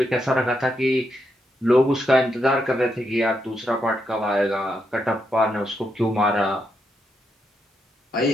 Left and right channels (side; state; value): both; normal; correlation 0.81